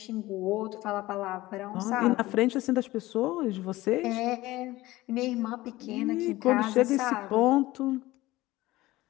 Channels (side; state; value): right; quieter; 18.1 dB